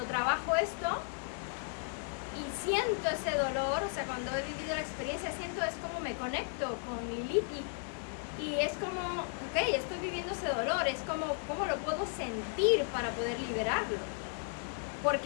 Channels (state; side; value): silent; right; 55 dB below the other